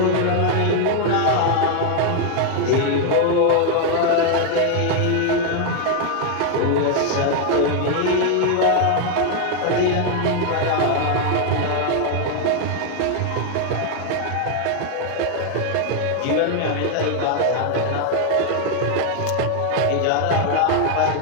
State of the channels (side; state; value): both; different; correlation 0.00